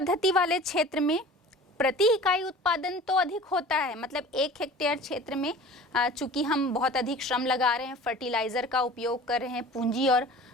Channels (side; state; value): both; normal; correlation 0.41